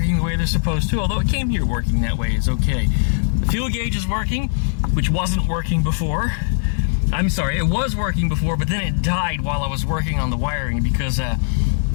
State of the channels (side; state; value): right; silent; 56 dB below the other